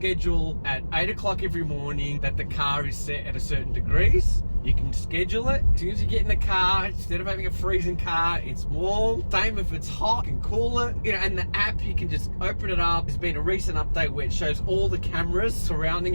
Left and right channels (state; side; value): inverted; both; correlation -1.00